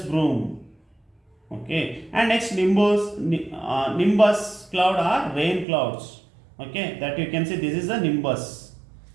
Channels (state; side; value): drops out; left; at 5.7 s